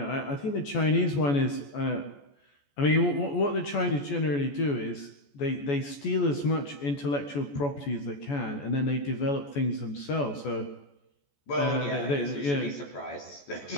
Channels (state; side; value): late; right; 14 ms